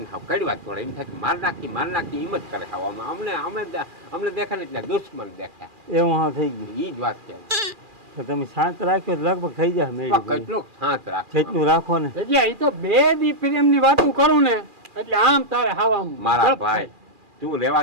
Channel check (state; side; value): late; left; 2.4 ms